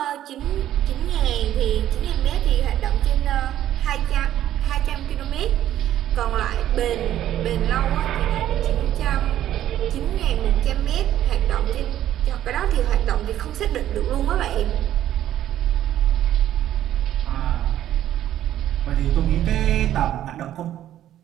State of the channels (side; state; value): left; quieter; 12.1 dB